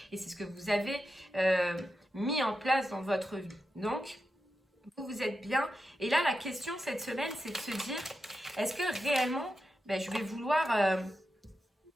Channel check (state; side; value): normal; both; correlation 0.89